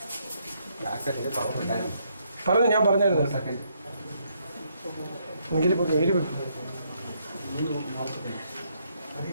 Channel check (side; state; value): both; inverted; correlation -0.73